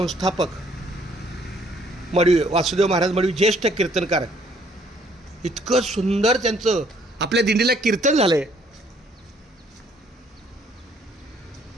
मडवी वासुदेव महाराज मडवी, ज्येष्ठ कीर्तनकार. इतकं सुंदर त्यांचं आपल्या दिंडीला कीर्तन झालंय.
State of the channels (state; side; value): normal; both; correlation 0.64